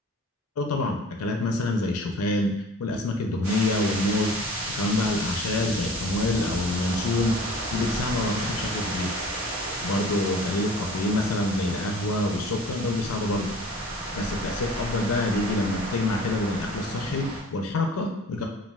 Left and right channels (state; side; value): normal; both; correlation 0.46